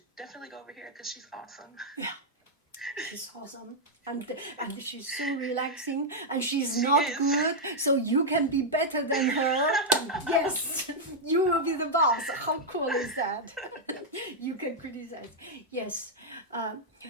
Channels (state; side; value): normal; both; correlation -0.03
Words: definitely go over here because she's awesome. Yeah. She's awesome, and she's so relaxing, and she's not good, so you can be better than her. Yes, you will be the boss. How cool is that? You can criticize. Yes.